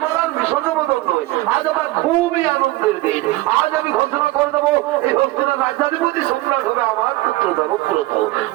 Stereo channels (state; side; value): quieter; left; 18.8 dB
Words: আর বিষণ্ণ বদল নয়, আজ আমার খুবই আনন্দের দিন। আজ আমি ঘোষণা করে দেবো এই হস্তিনার রাজ্যাধিপতি সম্রাট হবে আমার পুত্র দেবব্রত